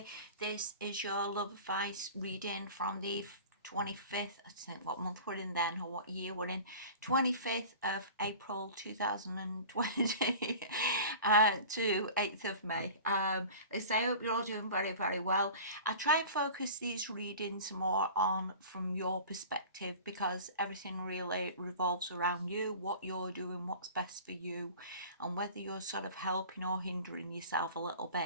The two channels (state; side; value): inverted; both; correlation -0.39